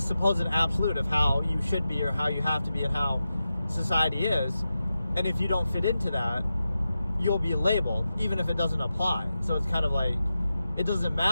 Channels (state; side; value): inverted; both; correlation -0.91